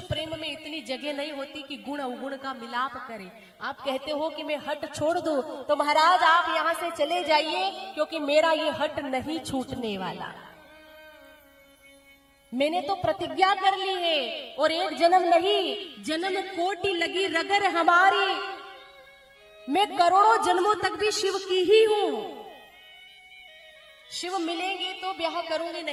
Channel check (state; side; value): identical; both; correlation 1.00